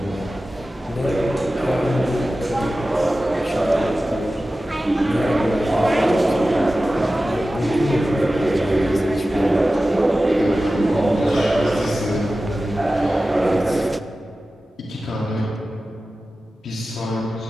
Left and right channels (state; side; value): normal; both; correlation 0.95